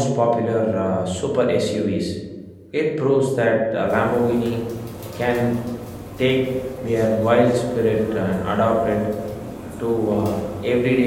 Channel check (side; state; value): both; identical; correlation 1.00